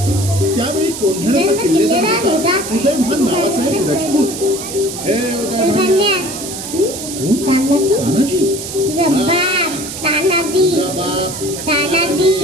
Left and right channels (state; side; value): noise; right; hiss, 8 dB below the sound